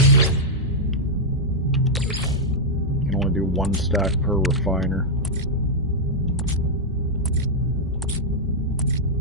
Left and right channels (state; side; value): normal; both; correlation -0.05